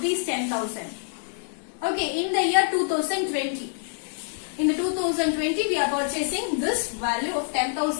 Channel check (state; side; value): silent; right; digital silence